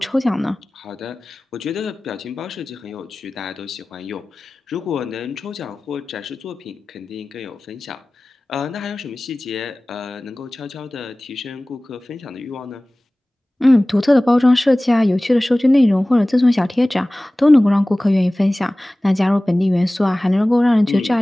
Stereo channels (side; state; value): both; normal; correlation 0.98